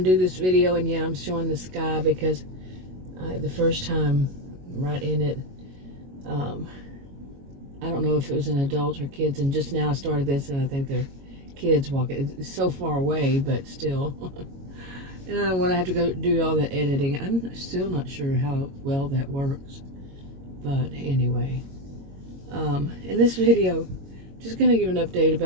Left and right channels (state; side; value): late; left; 22 ms